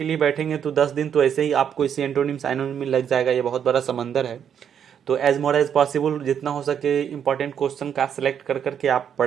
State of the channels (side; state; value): left; quieter; 8.4 dB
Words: लिए बैठेंगे तो 10 दिन तो ऐसे ही आपको इसी एंटोनिम साइनोनिम में लग जाएगा। ये बहुत बड़ा समंदर है। तो एज मोर एज पॉसिबल जितना हो सके इंपॉर्टेंट क्वेश्चन का सिलेक्ट कर करके आप